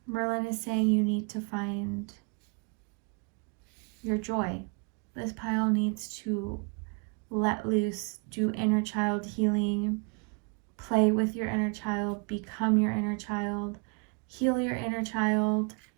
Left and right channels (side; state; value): left; quieter; 34.4 dB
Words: Merlin is saying you need to find your joy. This pile needs to let loose, do inner child healing, play with your inner child, become your inner child, heal your inner child,